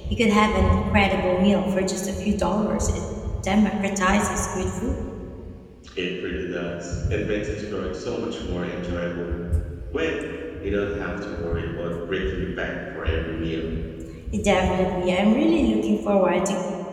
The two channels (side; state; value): both; identical; correlation 1.00